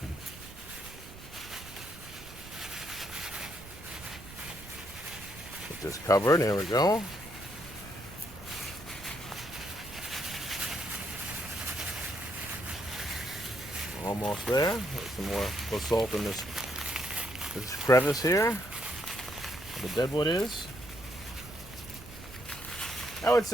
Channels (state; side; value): noise; right; rumble, 16 dB below the sound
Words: Get this covered. There we go. Almost there. Get some more basalt in this crevice here. Where the deadwood is. I would